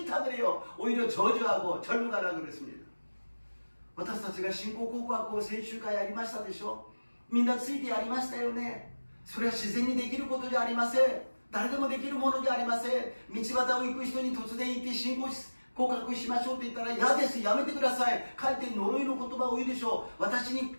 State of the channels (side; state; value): both; inverted; correlation -1.00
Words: 그래요. 오히려 저주하고 절로 가라 그랬습니다. 私たちが信仰告白を先週からやりましたでしょ。みんなついてやりましたよね。それは自然にできることじゃありません。誰でもできるものじゃありません。道端を行く人に突然行って信仰告白しましょうと言ったら嫌です、やめてください、かえって呪いの言葉を言うでしょう。私に